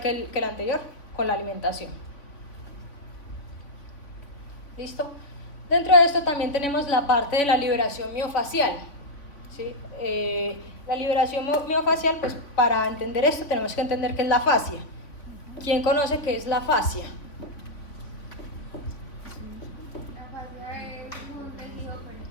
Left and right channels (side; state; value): right; late; 3.4 ms